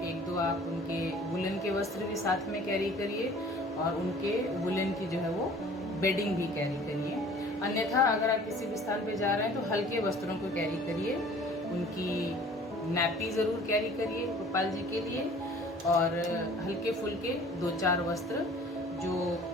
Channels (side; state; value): both; normal; correlation 0.49